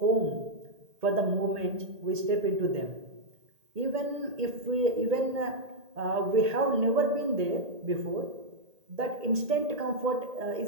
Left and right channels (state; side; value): late; left; 1.8 ms